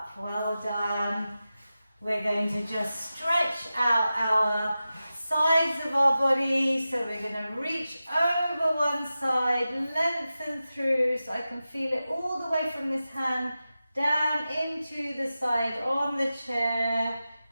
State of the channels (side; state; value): both; inverted; correlation -0.93